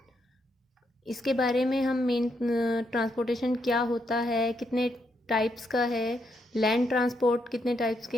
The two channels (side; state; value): both; normal; correlation 0.78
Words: इसके बारे में हम मेन ट्रांसपोर्टेशन क्या होता है, कितने टाइप्स का है, लैंड ट्रांसपोर्ट कितने टाइप्स के